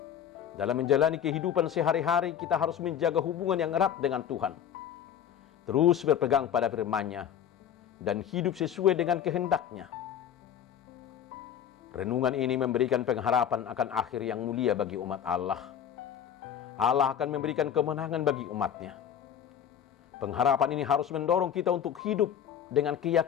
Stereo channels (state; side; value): quieter; right; 9.2 dB